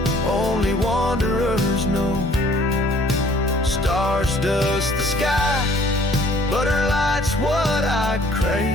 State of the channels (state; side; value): normal; both; correlation 0.57